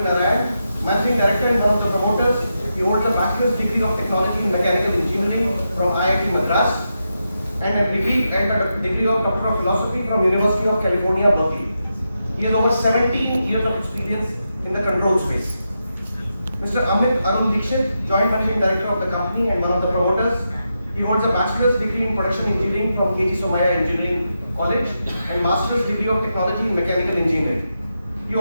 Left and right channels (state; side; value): inverted; both; correlation -0.86